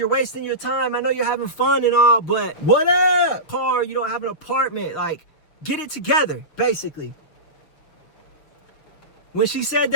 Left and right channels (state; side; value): late; right; 6.9 ms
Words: wasting your time. I know you're having fun and all, but what up? Car, you don't have an apartment. Like, get it together, basically. When she said